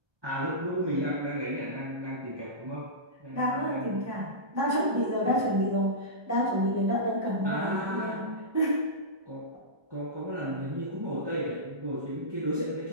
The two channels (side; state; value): left; late; 1.2 ms